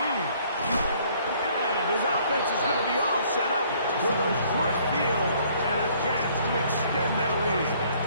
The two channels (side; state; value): both; inverted; correlation -0.61